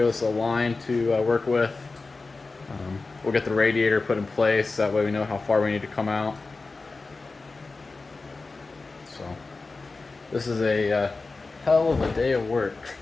us a line to work with. We'll get the radiator put in place, that way we know how far we need to come out. So this is a hell of a day of work.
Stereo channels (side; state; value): right; quieter; 3.8 dB